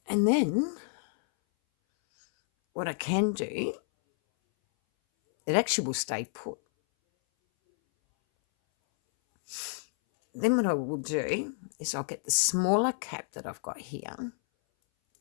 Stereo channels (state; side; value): silent; right; 58 dB below the other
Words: And then what I can do, it actually will stay put. Then what I will do is I'll get the smaller cap that I've got here.